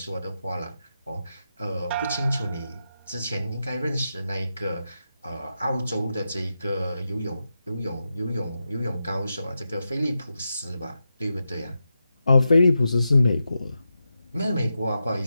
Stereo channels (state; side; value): inverted; both; correlation -0.89